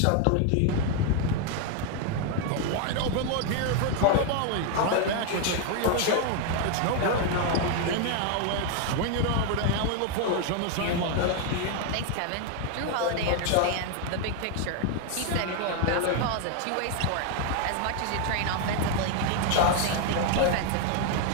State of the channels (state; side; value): different; both; correlation 0.01